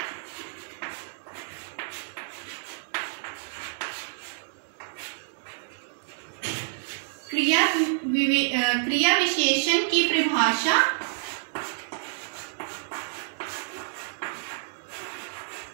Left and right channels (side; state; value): left; silent; digital silence